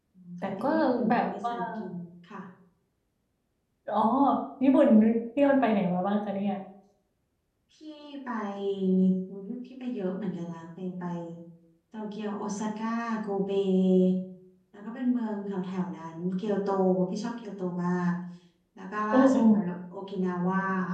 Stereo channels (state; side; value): identical; both; correlation 1.00